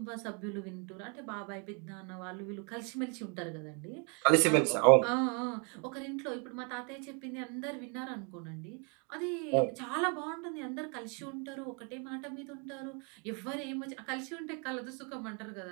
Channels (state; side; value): quieter; left; 35.1 dB